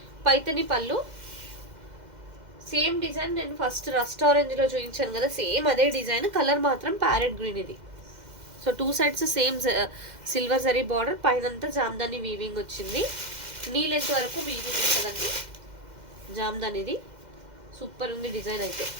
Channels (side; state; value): left; late; 2.0 ms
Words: పైతని పళ్ళు, సేమ్ డిజైన్ నేను ఫస్ట్ రస్ట్ ఆరెంజ్లో చూపించాను కదా, సేమ్ అదే డిజైన్, కలర్ మాత్రం ప్యారెట్ గ్రీన్ ఇది. So 2 sides same silver zari border, పైనంతా జామ్దాని వీవింగ్ వచ్చింది. నీ లెంత్ వరకు వీవింగ్ ఉంటుందండి జామ్దానిది. సూపర్ ఉంది డిజైన్ అయితే.